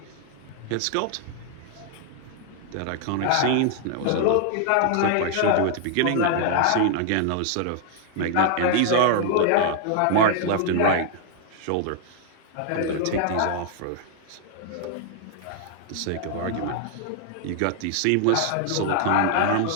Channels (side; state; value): both; different; correlation 0.00